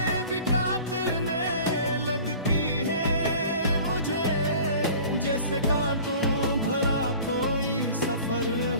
भी काटने लगती है मुझे, जैसे कांटों भरा कोई सफर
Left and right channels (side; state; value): both; inverted; correlation -0.43